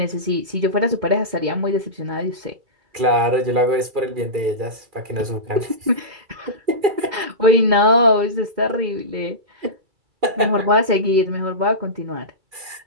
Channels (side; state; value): left; late; 2.3 ms